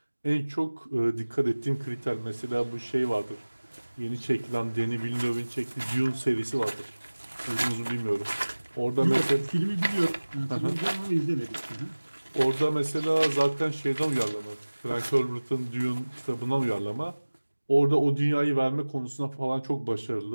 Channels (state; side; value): inverted; both; correlation -1.00